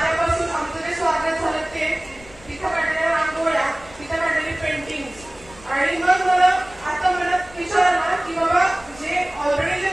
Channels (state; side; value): noise; left; rumble, 22 dB below the sound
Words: आमचं जे स्वागत झालं ते, तिथं काढलेल्या रांगोळ्या, तिथं काढलेली पेंटिंग, आणि मग मला आता मनात विचार आला की बाबा जे ऑलरेडी